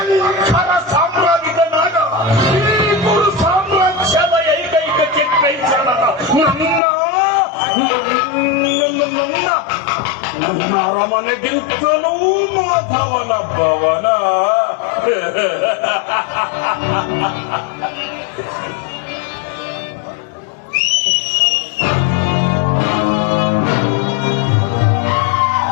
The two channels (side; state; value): right; drops out; at 6.8 s